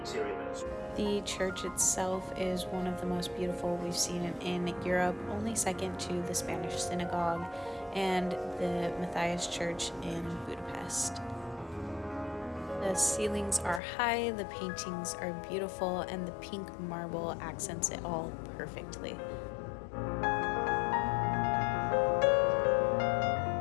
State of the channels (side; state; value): right; drops out; at 13.8 s